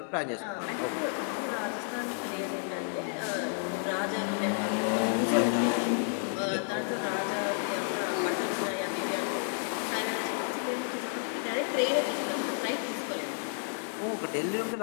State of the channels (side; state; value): right; silent; 57 dB below the other